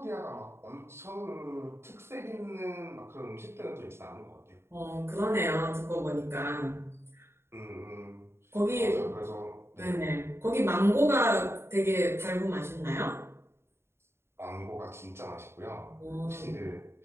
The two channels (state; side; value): late; left; 0.12 ms